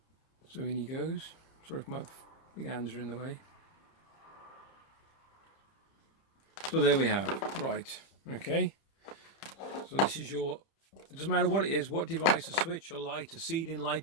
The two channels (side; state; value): right; late; 30 ms